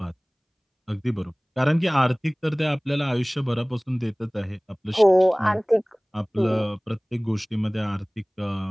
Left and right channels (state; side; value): identical; both; correlation 1.00